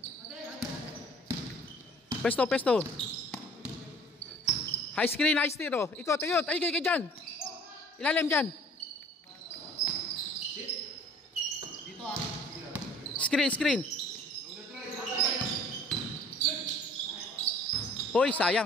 Pesto, pesto. High screen, high steer, oh. Ikot, ikot. Ay, ikot dyan. Ilalim dyan. Screen, screen. Hoy,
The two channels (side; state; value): both; normal; correlation 0.50